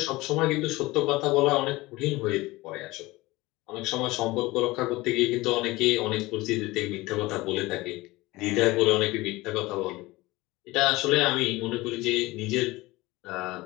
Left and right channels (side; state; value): right; quieter; 20.4 dB